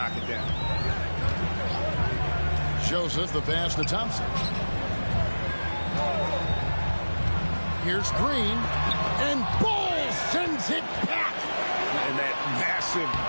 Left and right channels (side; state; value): both; inverted; correlation -1.00